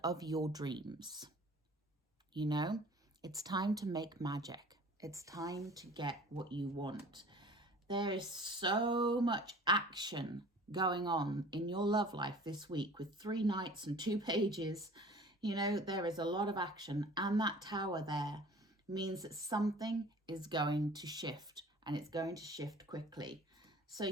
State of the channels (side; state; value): both; normal; correlation 0.46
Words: of your dreams. You know, it's time to make magic. It's time to get what you want. There is so much action going on in your love life this week with 3 knights and 2 pages. You know, there is a lot of action, and that tower there means that something is going to shift, and it's going to shift quickly. So